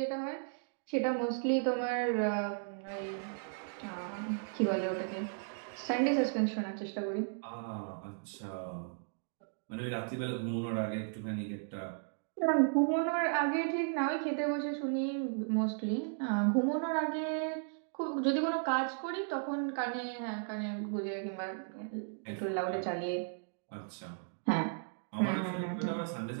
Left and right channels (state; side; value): silent; left; digital silence